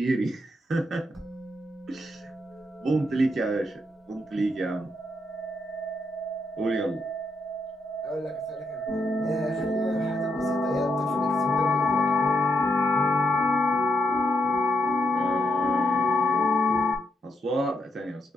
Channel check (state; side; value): normal; both; correlation 0.80